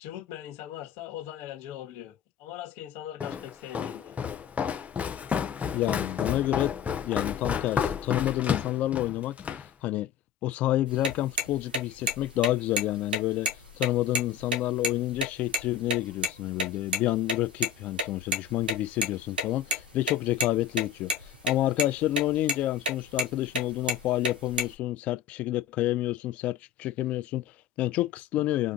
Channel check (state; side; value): quieter; right; 8.8 dB